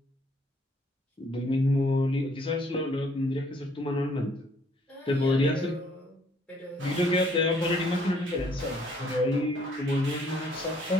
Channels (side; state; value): both; normal; correlation 0.64